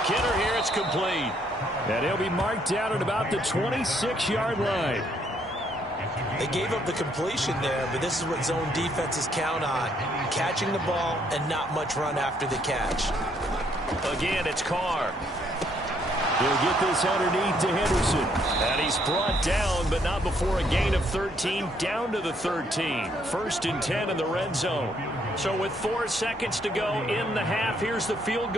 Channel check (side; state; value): both; normal; correlation 0.69